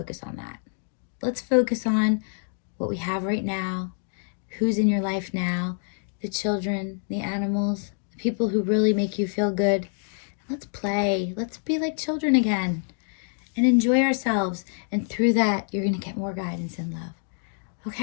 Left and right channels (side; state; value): right; silent; digital silence